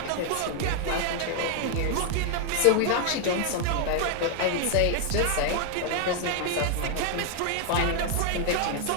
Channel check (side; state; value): both; different; correlation 0.00